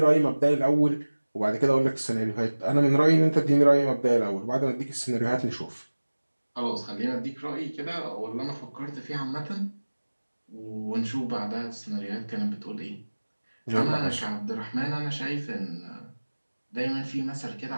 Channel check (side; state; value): both; inverted; correlation -1.00